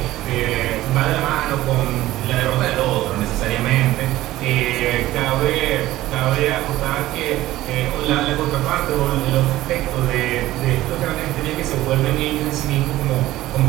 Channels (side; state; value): left; quieter; 15.8 dB